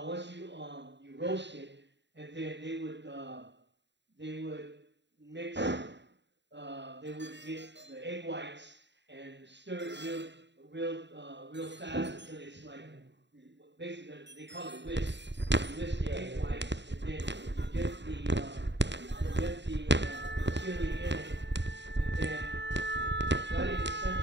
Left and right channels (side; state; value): left; late; 0.52 ms